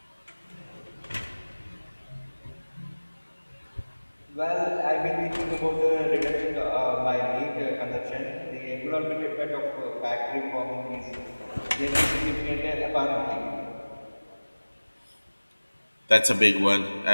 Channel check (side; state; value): both; inverted; correlation -1.00